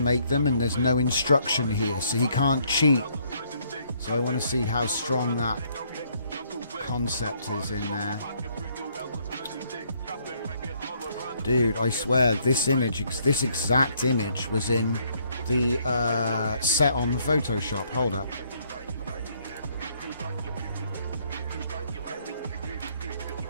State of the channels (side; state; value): both; inverted; correlation -0.68